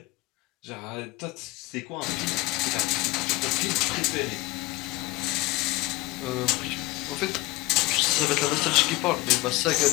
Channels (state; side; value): quieter; right; 21.2 dB